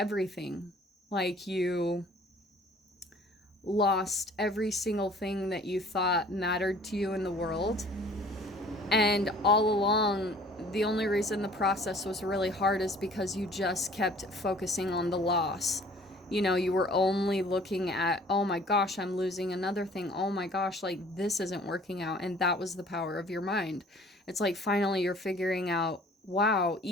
Like you lost every single thing that you thought mattered to you in the world. And all along, the only reason the process was really hard is because you just kept focusing on the loss. You know, you were only looking at, oh my gosh, I'm losing another thing. Oh my gosh, like this isn't working out. And that was the power of your mind. It's like finally you're figuring out, wow,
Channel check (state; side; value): normal; both; correlation 0.52